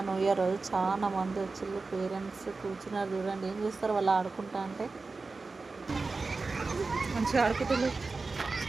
న్యూ ఇయర్ రోజు, చాలా మంది వచ్చిళ్ళు పేరెంట్స్ కూర్చున్నారు. చూడండి ఏం చేస్తారు వాళ్ళు ఆడుకుంటా అంటే. మంచిగా ఆడుకుంటున్నారు,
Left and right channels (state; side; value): quieter; left; 3.9 dB